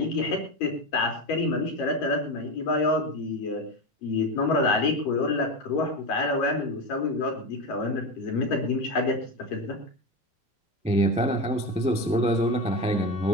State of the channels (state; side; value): normal; both; correlation 0.18